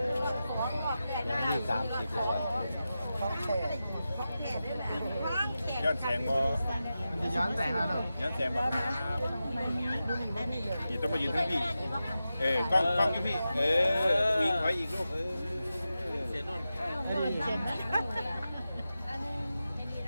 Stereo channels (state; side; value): inverted; both; correlation -0.92